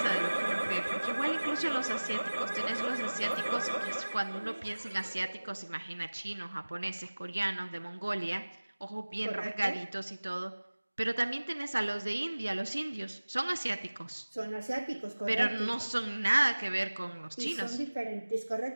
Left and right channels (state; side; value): inverted; both; correlation -1.00